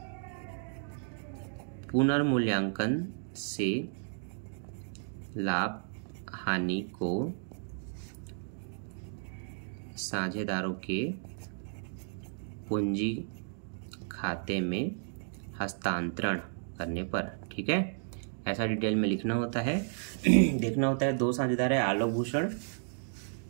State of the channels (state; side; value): silent; left; digital silence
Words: पुनर्मूल्यांकन से लाभ हानि को साझेदारों के पूंजी खाते में हस्तांतरण करने पर, ठीक है। ऐसा डिटेल में लिखना होता है। देखना होता है, दो साझेदार है आलोक भूषण,